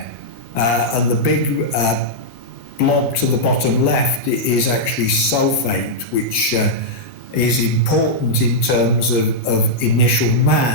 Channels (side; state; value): both; normal; correlation -0.08